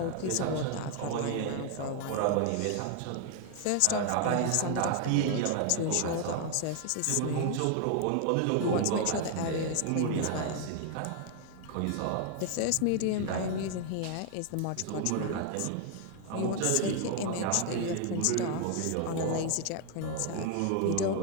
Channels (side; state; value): both; different; correlation 0.00